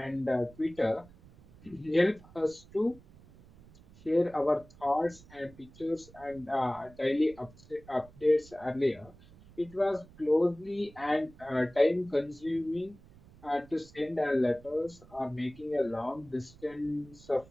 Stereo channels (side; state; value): right; noise; rumble, 23 dB below the sound